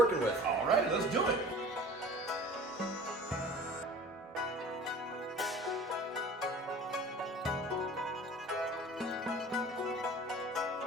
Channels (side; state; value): both; normal; correlation 0.43